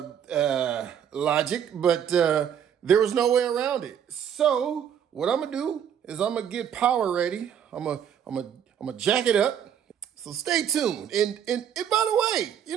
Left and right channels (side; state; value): left; quieter; 8.9 dB